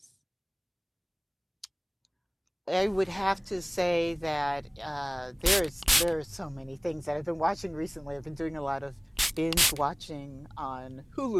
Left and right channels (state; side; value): identical; both; correlation 1.00